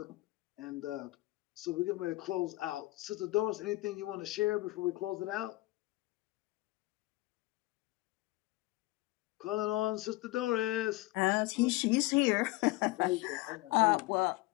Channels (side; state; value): right; quieter; 19.9 dB